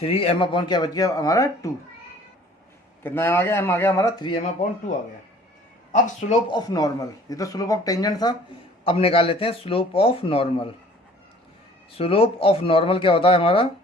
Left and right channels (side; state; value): both; normal; correlation 0.52